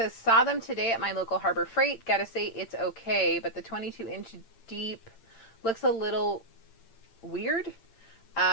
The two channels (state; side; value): late; right; 8.8 ms